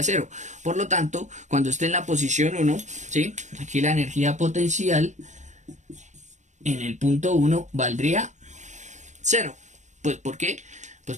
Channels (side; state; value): left; late; 0.35 ms